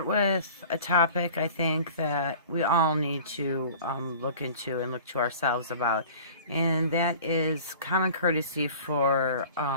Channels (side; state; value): both; inverted; correlation -0.44